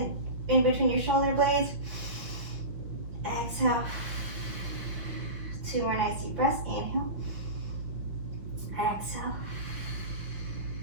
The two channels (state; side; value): late; left; 5.9 ms